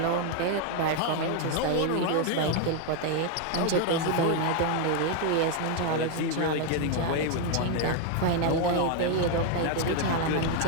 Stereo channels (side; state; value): both; different; correlation 0.01